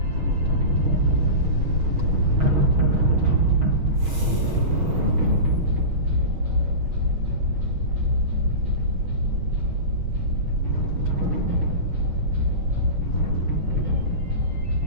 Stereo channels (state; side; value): late; left; 6.3 ms